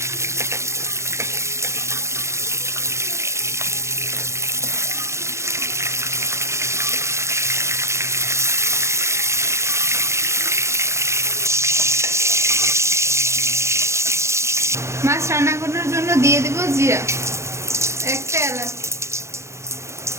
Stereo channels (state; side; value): late; left; 0.14 ms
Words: মাছ রান্না করার জন্য দিয়ে দেব জিরা, একটা এলাচ,